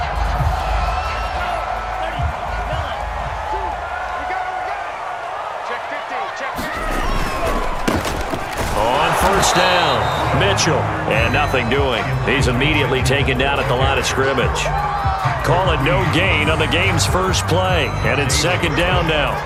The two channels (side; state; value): both; identical; correlation 1.00